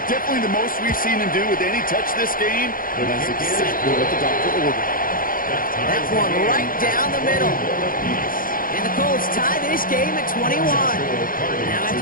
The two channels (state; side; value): late; right; 0.41 ms